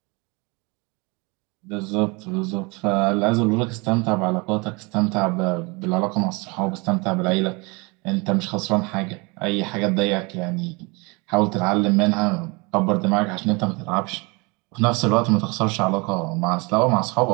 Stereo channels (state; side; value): quieter; left; 28.2 dB